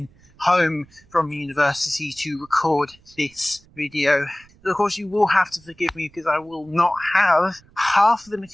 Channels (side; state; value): right; noise; rumble, 28 dB below the sound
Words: home from university to record this video. Of course, you will have to forgive me because I will not have half of the